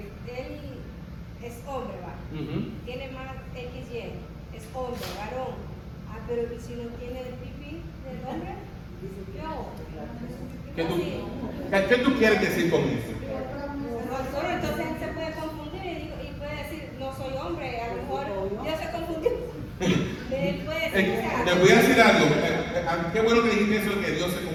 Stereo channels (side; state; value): both; identical; correlation 1.00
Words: él es hombre, ¿va? Tiene más XY, es hombre, varón. Ah, pero ¿y si no tiene el pipí del hombre? ¿Qué tú quieres decir con eso? Pastor, entonces él se puede confundir y puede decir, no soy hombre, a lo mejor yo se confundió. Él puede decir, te voy a decir algo, qué bueno que dijiste eso, que Dios se